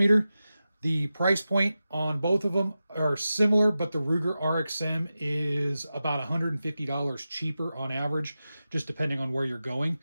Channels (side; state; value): both; inverted; correlation -0.93